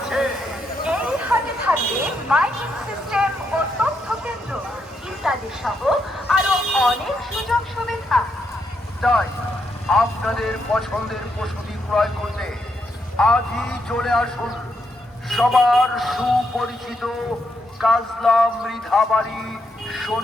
এই হাটে থাকবে মাইকিং সিস্টেম ও তথ্য কেন্দ্র ইত্যাদি সহ আরো অনেক সুযোগ সুবিধা। তাই আপনাদের পছন্দের পশুটি ক্রয় করতে আজই চলে আসুন সবার সুপরিচিত কাজলা মৃধাবাড়ি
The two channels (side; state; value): both; normal; correlation 0.79